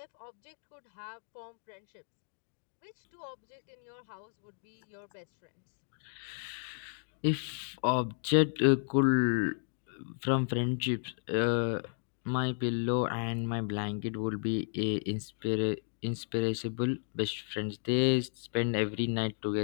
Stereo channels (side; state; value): right; silent; digital silence